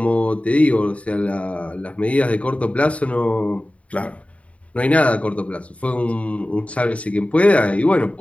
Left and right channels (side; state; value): right; late; 0.065 ms